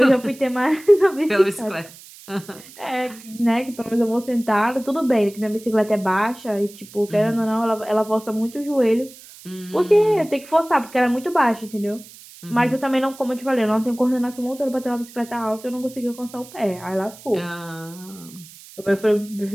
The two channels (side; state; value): right; noise; hiss, 20 dB below the sound